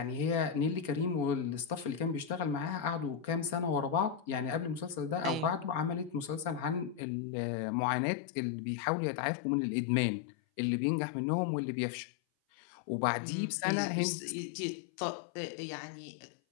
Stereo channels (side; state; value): right; drops out; at 7.0 s